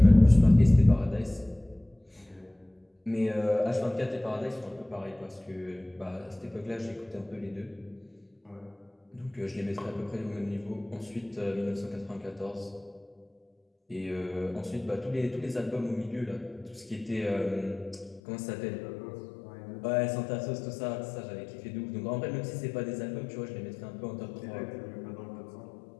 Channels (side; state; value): right; drops out; at 18.2 s